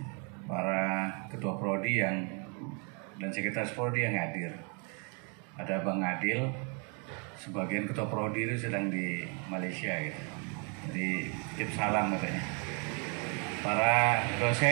para Ketua Prodi dan Sekretaris Prodi yang hadir. Ada Bang Adil, sebagian Ketua Prodi itu sedang di Malaysia gitu. Jadi titip salam katanya. Para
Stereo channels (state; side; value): quieter; left; 36.0 dB